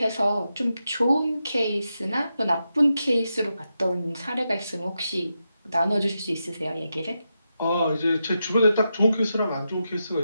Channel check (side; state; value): both; inverted; correlation -0.87